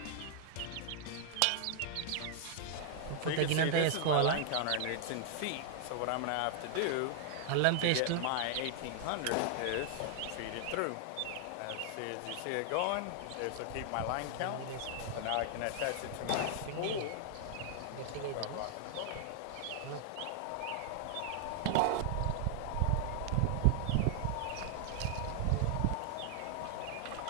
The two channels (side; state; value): both; different; correlation 0.00